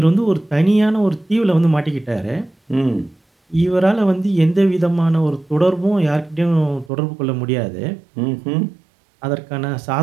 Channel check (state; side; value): drops out; left; at 6.9 s